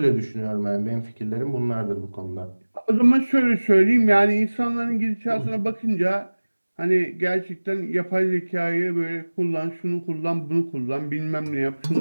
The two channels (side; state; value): both; inverted; correlation -1.00